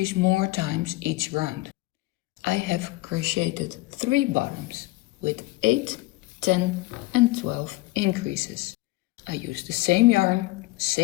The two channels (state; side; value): quieter; right; 20.5 dB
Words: more times each round. I have crocheted 3 bottoms with 8, 10 and 12 increases. I used the same yarn,